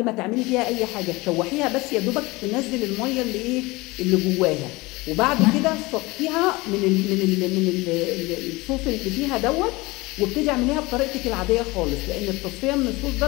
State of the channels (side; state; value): right; quieter; 22.5 dB